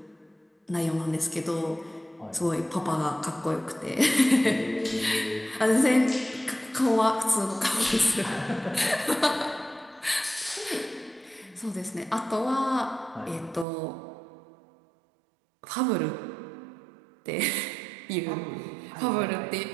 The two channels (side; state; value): left; drops out; at 13.7 s